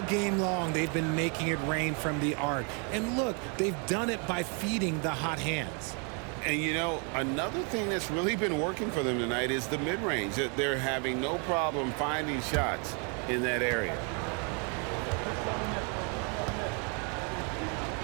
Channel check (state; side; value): quieter; left; 36.6 dB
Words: game long, they've been making it rain from the arc. And look, they've done it by feeding the hot hands. And, you know, another thing that's really been working for them tonight is the mid-range. They're having no problem finding shots in that area.